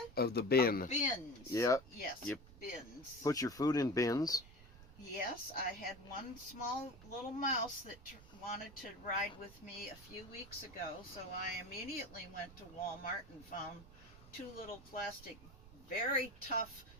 Of the bin. Of bins. Yep. Yes, Yep. Bins. Put your food in bins. Yes, I had one small little mouse that wanted to ride with me a few weeks ago, so I immediately went to Walmart and found 2 little plastic, very tough,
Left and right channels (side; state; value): right; noise; rumble, 19 dB below the sound